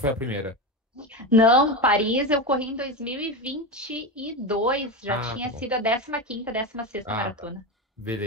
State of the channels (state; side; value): normal; both; correlation 0.18